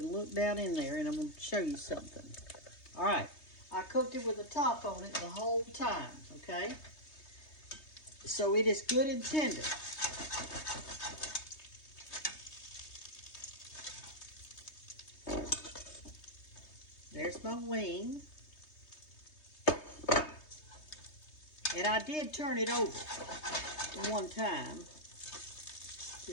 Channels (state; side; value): late; right; 3.2 ms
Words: look down in there and I'm going to show you something. All right, I cooked it with the top on it the whole time, okay? So it is good and tender. There's my wing. And I did turn it over one time